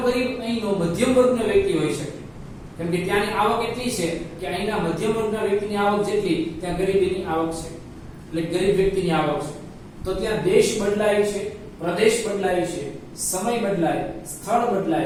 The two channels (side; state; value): both; identical; correlation 1.00